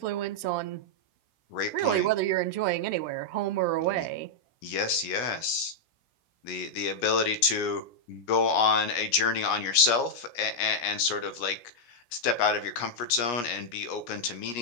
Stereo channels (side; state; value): right; late; 17 ms